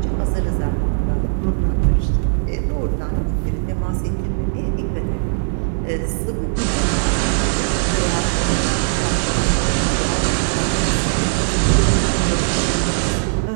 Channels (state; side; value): silent; left; digital silence